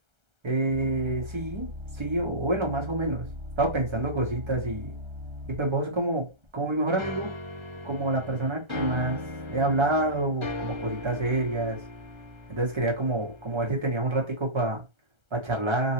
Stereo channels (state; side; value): late; left; 1.3 ms